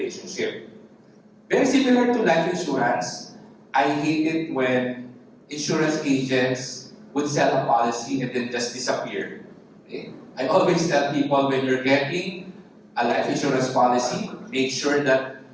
Very similar to life insurance, I hate it when insurance agents would sell a policy and then just disappear. Okay? I always tell people, when you're getting a life insurance policy, make sure that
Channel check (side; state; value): both; identical; correlation 1.00